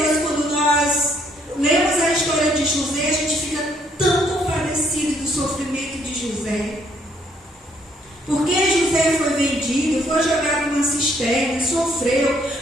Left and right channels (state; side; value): normal; both; correlation 0.68